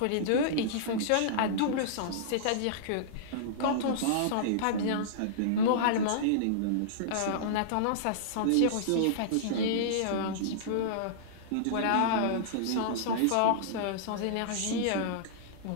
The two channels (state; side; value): different; both; correlation -0.03